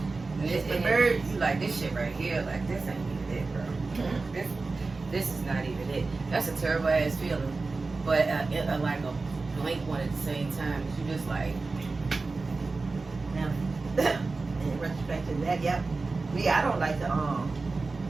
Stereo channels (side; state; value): left; quieter; 3.8 dB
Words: And birds, you like this shit right here. Like this ain't even it, bro. This is not even it. That's a terrible ass feeling. But like a blank one at the same time. You just like. Now, in retrospect to that, yep. Me, I don't like to